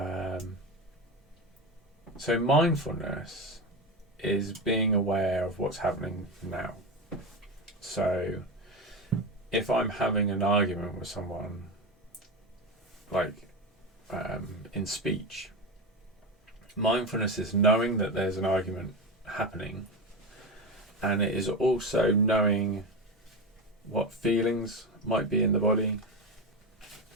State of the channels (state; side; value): normal; both; correlation 0.19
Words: So mindfulness is being aware of what's happening now. So if I'm having an argument with someone, like in speech, mindfulness is knowing that there's an argument happening, and it is also knowing what feelings might be in the body.